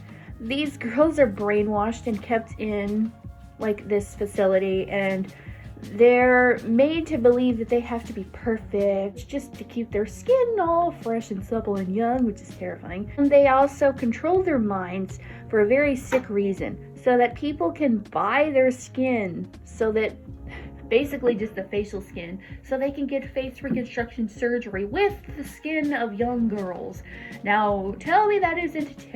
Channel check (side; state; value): both; identical; correlation 1.00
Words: These girls are brainwashed and kept in this facility, and they're made to believe that they have to be perfect just to keep their skin all fresh and supple and young, which is terrifying. And they also control their minds for a very sick reason, so that people can buy their skin, so that basically just the facial skin, so they can get face reconstruction surgery with the skin of young girls. Now, tell me that isn't